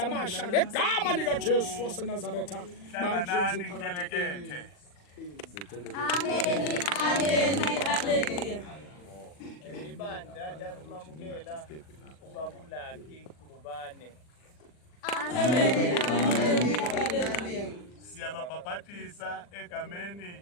amasha ngegama likaJesu waseNazaretha hlanganani ngelekethe Amen. Amen. Hallelujah. ibandla lalumamukela ubabulakhi ubane siyababhabhatisa egameni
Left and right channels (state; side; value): late; right; 40 ms